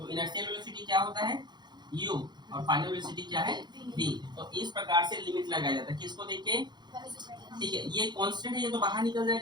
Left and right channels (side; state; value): left; late; 0.21 ms